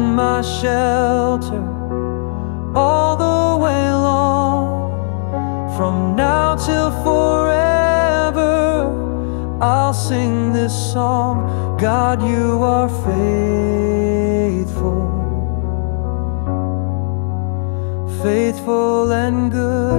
my shelter all the way long. From now till forever, I'll sing this song. God, you are faithful, faithful and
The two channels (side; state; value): right; silent; digital silence